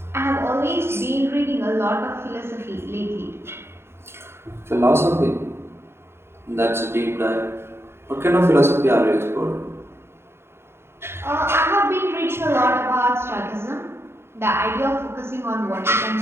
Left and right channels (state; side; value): late; left; 0.12 ms